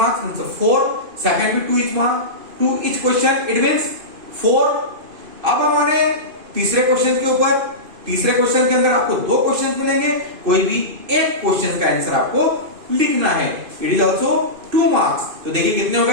4, सेकंड भी 2 each marks, 2 each question, it means 4। अब हमारे तीसरे क्वेश्चन के ऊपर, तीसरे क्वेश्चन के अंदर आपको 2 क्वेश्चन मिलेंगे। कोई भी एक क्वेश्चन का आंसर आपको लिखना है। It is also 2 marks. तो देखिए कितने हो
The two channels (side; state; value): left; late; 2.5 ms